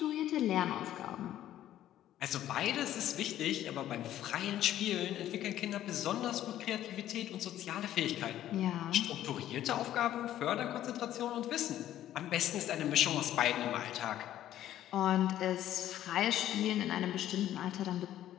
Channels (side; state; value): right; quieter; 12.5 dB